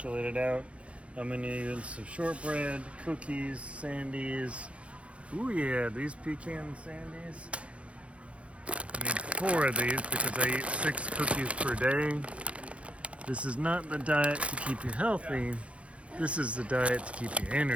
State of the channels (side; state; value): left; late; 0.062 ms